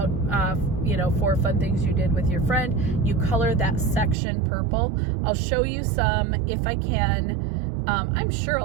4 fun things you did with your friend, you color that section purple. I'll show you some if I can. I'm sure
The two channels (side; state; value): left; drops out; at 4.2 s